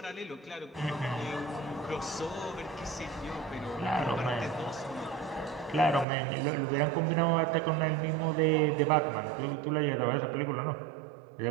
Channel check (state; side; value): drops out; left; at 6.1 s